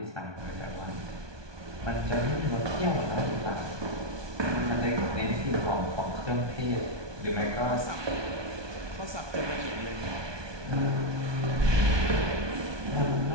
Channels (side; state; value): left; late; 1.2 ms